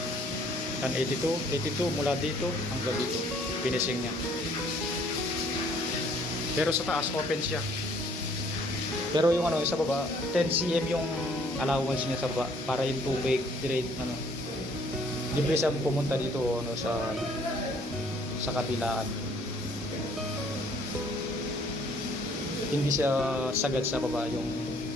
Yan 82 mula dito hanggang dito, finishing niya. Pero sa taas open siya. Pero yung ano sa baba, 10 cm yung allowance niya sa baba para yung tubig direct ano. Libre siya pumunta dito ano sa kabilaan. Hindi siya sagad sa baba yung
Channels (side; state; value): both; normal; correlation 0.61